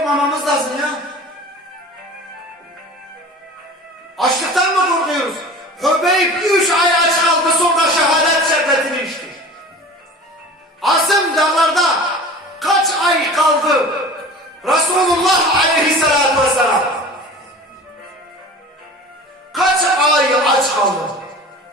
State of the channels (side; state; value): both; normal; correlation 0.39